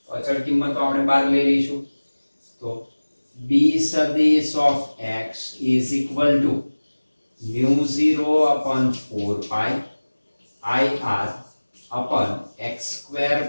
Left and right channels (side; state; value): both; inverted; correlation -1.00